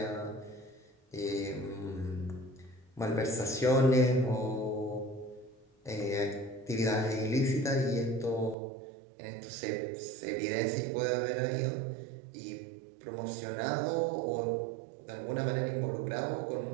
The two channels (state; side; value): drops out; left; at 8.6 s